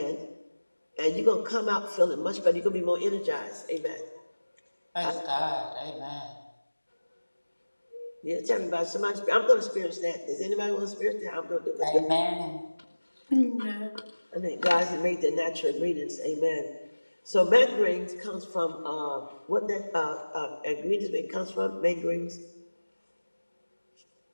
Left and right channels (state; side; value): inverted; both; correlation -1.00